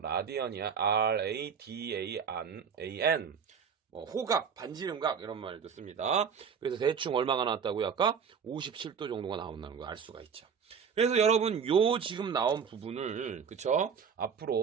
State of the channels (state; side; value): quieter; left; 6.8 dB